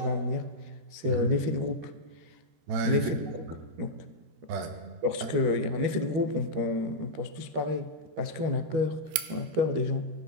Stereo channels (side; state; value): left; late; 14 ms